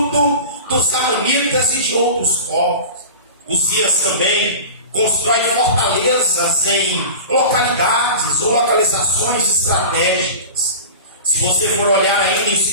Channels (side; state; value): both; inverted; correlation -0.33